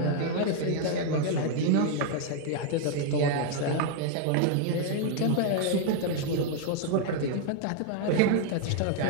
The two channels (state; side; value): different; both; correlation 0.00